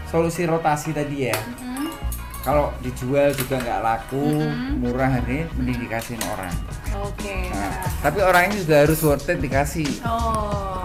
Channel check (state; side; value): identical; both; correlation 1.00